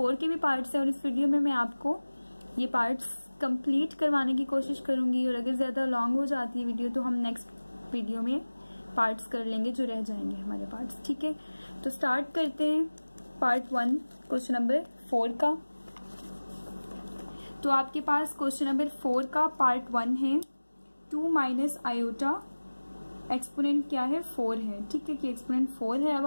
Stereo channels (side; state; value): both; inverted; correlation -1.00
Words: के भी पार्ट्स हैं। और इस वीडियो में मैं आपको ये पार्ट्स कंप्लीट करवाने की कोशिश करूंगी, और अगर ज्यादा लॉन्ग हो जाती है वीडियो तो हम नेक्स्ट वीडियो में पार्ट्स कर लेंगे जो रह जाएंगे हमारे पार्ट्स, ठीक है। तो स्टार्ट करते हैं पार्ट 1 क्वेश्चन नंबर 4 का। तो आपके पास क्वेश्चन नंबर 4 का पार्ट 1 है 2 माइनस आयोटा, एक्सपोनेंट क्या है 4 है, ठीक है, कि एक्सपोनेंट 4 है। अब